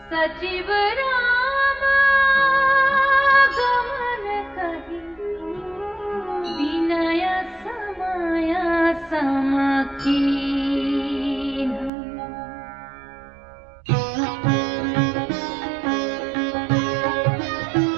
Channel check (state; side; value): drops out; left; at 11.9 s